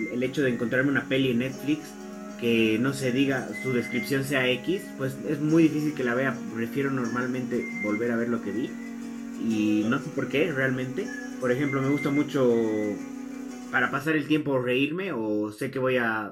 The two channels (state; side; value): identical; both; correlation 1.00